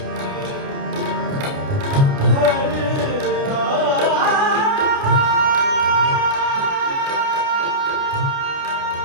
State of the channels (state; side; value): late; left; 28 ms